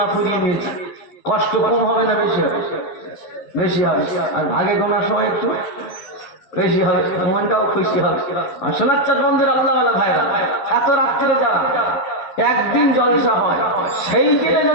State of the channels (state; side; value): late; right; 12 ms